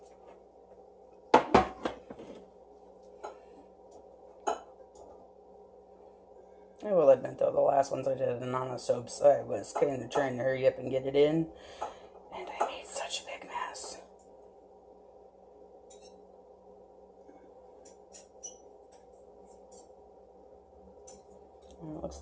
I will admit though, the last ones I did in on the soaps, I was kind of trying to hurry up and get it in. And I made such a big mess. And it looks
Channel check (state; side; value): identical; both; correlation 1.00